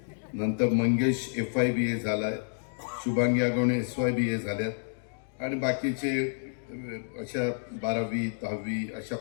नंतर मंगेश FY BA झालाय. शुभांगी आगवणे SY BA झाल्यात आणि बाकीचे अशा 12वी 10वी अशा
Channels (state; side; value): silent; right; 58 dB below the other